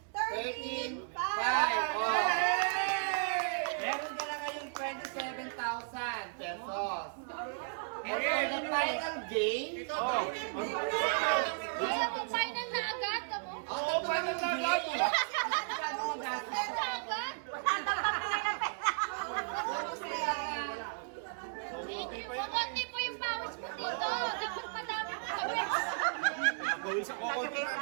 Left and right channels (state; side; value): silent; left; digital silence